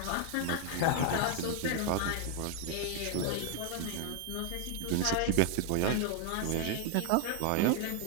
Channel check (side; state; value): both; different; correlation 0.00